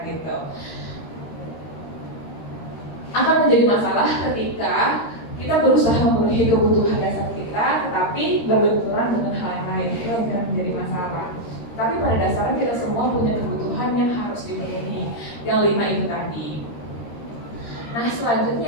gitu. Akan menjadi masalah ketika kita berusaha memenuhi kebutuhan dasar kita, tetapi berbenturan dengan hal yang lain, itu akan menjadi masalah. Tapi pada dasarnya kita semua punya kebutuhan yang harus dipenuhi, yang 5 itu tadi. Nah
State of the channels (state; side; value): late; right; 13 ms